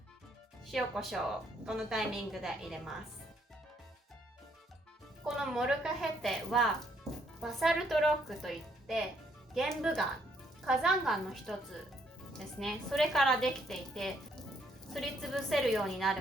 塩コショウをこのタイミングで入れます。このモルカヘテはバサルトロックといって玄武岩、火山岩の一つですね。それからできていて、すりつぶせるようにな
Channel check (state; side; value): normal; both; correlation 0.70